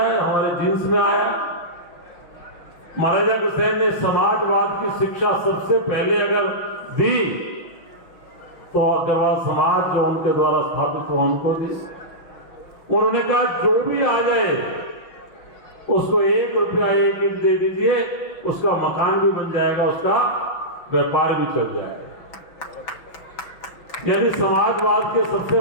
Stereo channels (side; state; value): right; late; 6.0 ms